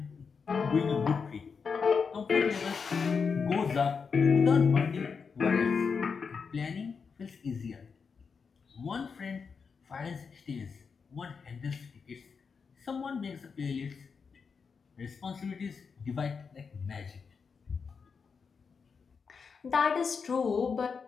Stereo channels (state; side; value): quieter; right; 5.6 dB